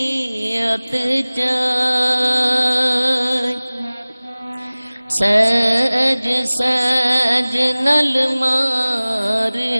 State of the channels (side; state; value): both; inverted; correlation -0.99